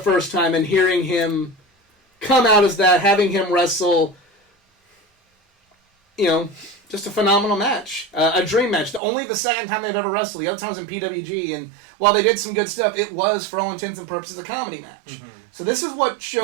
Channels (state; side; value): drops out; left; at 9.0 s